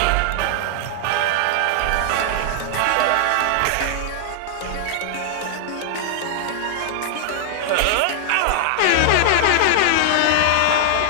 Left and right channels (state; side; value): different; both; correlation -0.01